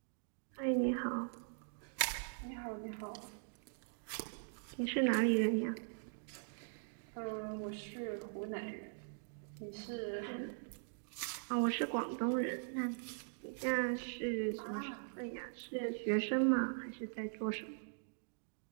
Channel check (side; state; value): left; silent; digital silence